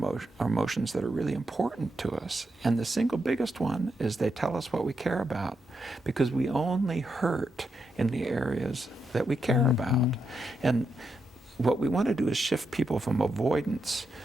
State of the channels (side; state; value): both; normal; correlation 0.83